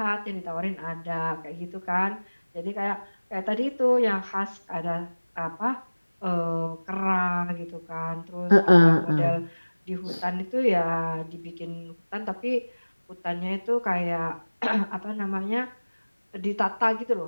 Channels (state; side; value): inverted; both; correlation -1.00